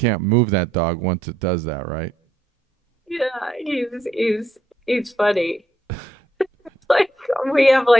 move that dog once it does that, right? yeah, he's funny. Like we have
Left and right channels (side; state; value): both; normal; correlation 0.75